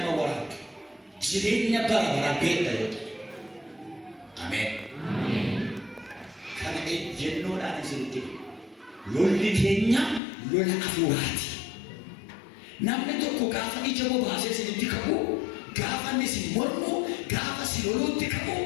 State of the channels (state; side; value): drops out; right; at 10.2 s